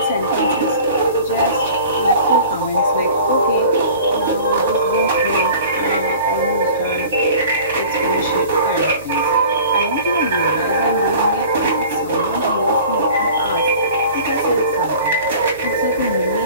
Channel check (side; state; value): both; inverted; correlation -0.44